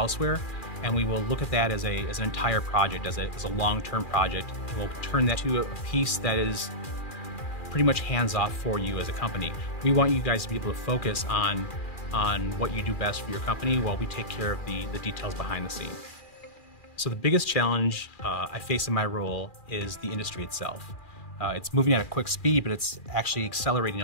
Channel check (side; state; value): right; late; 2.4 ms